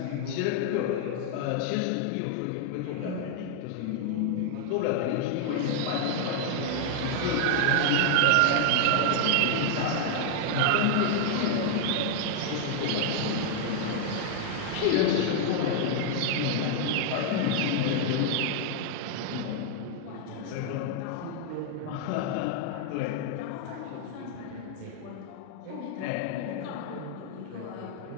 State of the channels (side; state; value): both; different; correlation 0.00